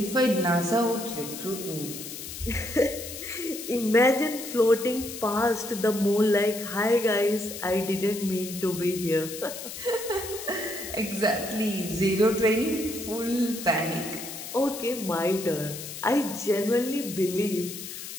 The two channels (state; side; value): noise; left; hiss, 10 dB below the sound